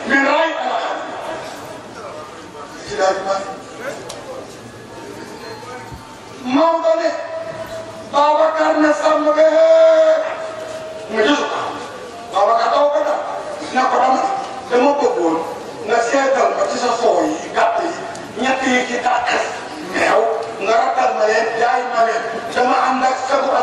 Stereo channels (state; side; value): identical; both; correlation 1.00